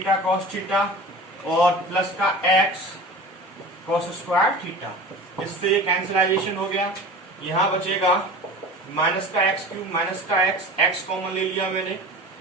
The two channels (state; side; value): normal; both; correlation 0.37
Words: कॉस थीटा और प्लस का एक्स कॉस स्क्वायर थीटा। इससे कैंसिलाइजेशन हो गया। यहां बचेगा माइनस का एक्स क्यूब माइनस का एक्स कॉमन ले लिया मैंने,